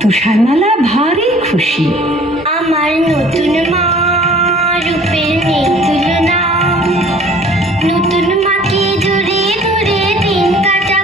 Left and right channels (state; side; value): normal; both; correlation 0.51